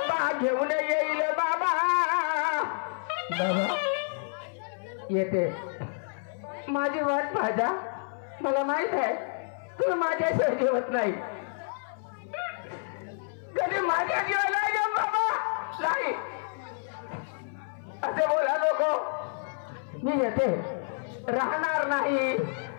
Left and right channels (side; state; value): right; silent; 59 dB below the other